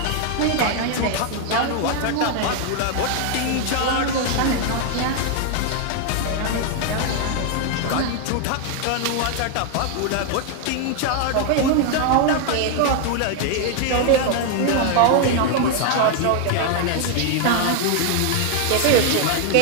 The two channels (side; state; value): both; different; correlation 0.00